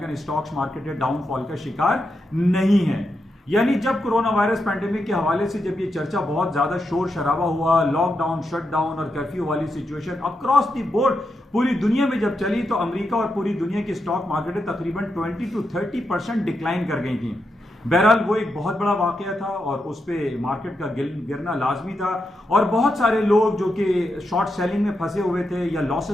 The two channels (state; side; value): normal; both; correlation 0.85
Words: स्टॉक्स मार्केट डाउनफॉल का शिकार नहीं है। यानी जब कोरोना वायरस पैंडेमिक के हवाले से जब ये चर्चा बहुत ज्यादा शोर शराबा हुआ, लॉकडाउन, शटडाउन और कर्फ्यू वाली सिचुएशन अक्रॉस द बोर्ड पूरी दुनिया में जब चली, तो अमेरिका और पूरी दुनिया की स्टॉक मार्केटें तकरीबन 20 to 30% डिक्लाइन कर गई थी। बहरहाल वो एक बहुत बड़ा वाकया था और उस पर मार्केट का गिरना लाजमी था और बहुत सारे लोग जो कि शॉर्ट सेलिंग में फंसे हुए थे या